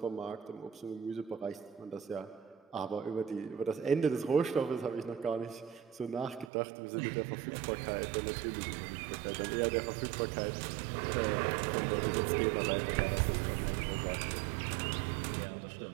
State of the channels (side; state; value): left; drops out; at 6.5 s